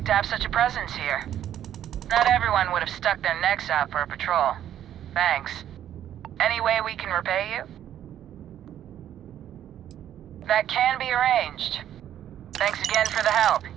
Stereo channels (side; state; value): left; quieter; 10.9 dB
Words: to have such a presence here. Not everyone would have stuck their necks out for a patrol. Thanks. Any way we can repay you? That can be arranged. Thanks again for the help.